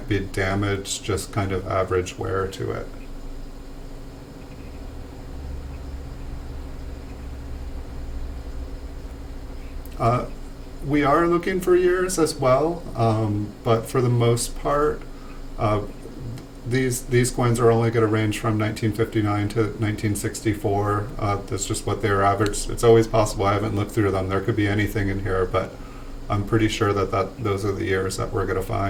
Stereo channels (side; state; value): both; identical; correlation 1.00